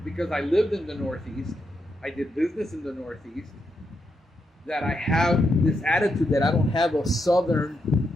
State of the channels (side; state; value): both; normal; correlation 0.82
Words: because I lived in the Northeast, I did business in the Northeast, that I have this attitude that I don't have a Southern